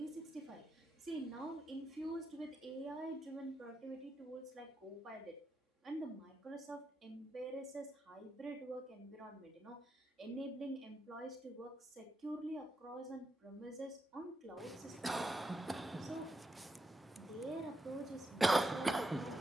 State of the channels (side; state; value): both; normal; correlation 0.83